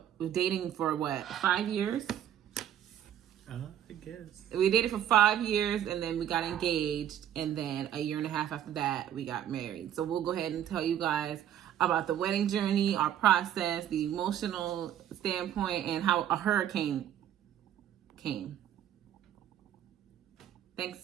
dating for what, 5 years? I guess. We dated for 5 years, and then we got engaged, and then a year and a half after that, we got married. So we'll go ahead and tell you guys about the wedding journey, our process, the emotional standpoint, and how a hurricane came. Thanks,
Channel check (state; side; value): quieter; left; 10.6 dB